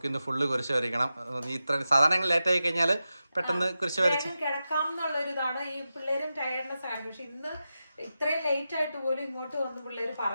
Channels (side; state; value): both; inverted; correlation -0.92